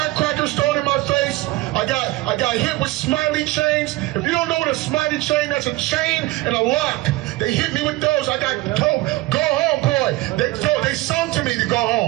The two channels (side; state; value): left; quieter; 19.6 dB